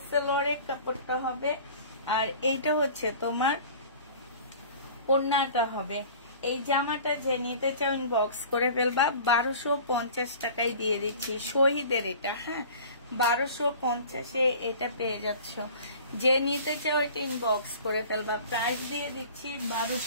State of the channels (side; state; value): both; inverted; correlation -0.43